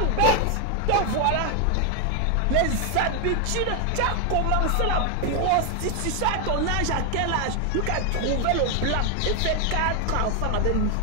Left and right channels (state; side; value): different; both; correlation 0.01